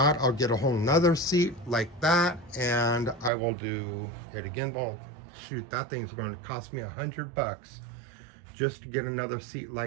I'll get a whole nother seat like that, and I will do it again. Well, shoot, that thing's going to cost me $100 just to get another seat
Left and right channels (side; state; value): left; drops out; at 3.3 s